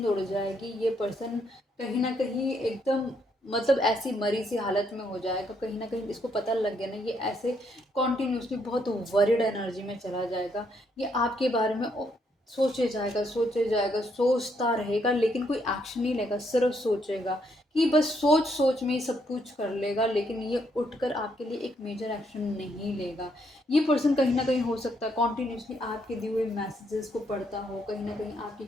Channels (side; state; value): both; normal; correlation 0.74